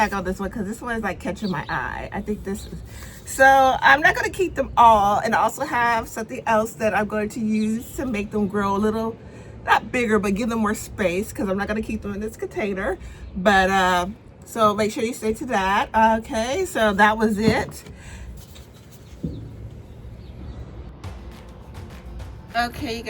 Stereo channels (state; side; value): identical; both; correlation 1.00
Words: on this one because this one is like catching my eye. I think this is, so I'm not gonna keep them all, and I also have something else that I'm going to use to make them grow a little, not bigger, but give them more space, because I'm not gonna keep them in this container. But so make sure you stay to that. Okay, so that was it. Okay, you